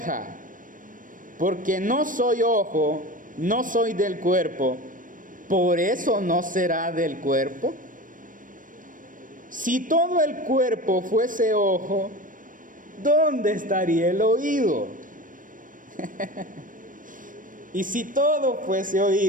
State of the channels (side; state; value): left; late; 0.39 ms